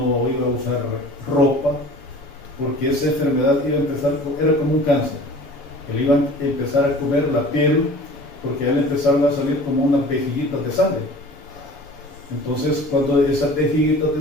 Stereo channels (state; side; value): normal; both; correlation 0.44